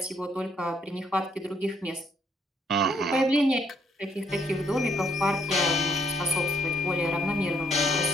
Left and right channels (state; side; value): normal; both; correlation 0.70